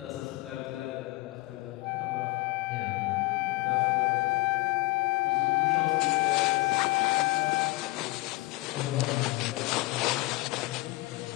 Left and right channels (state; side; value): quieter; right; 22.2 dB